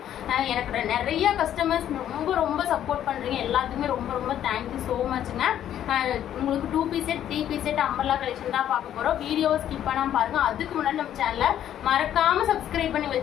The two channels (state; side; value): quieter; right; 10.8 dB